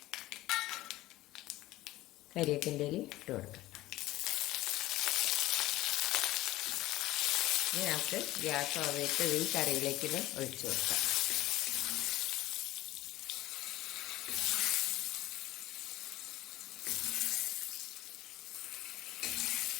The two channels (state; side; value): quieter; right; 17.0 dB